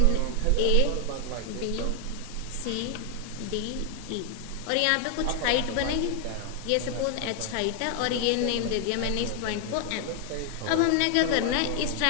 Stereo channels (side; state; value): both; different; correlation 0.00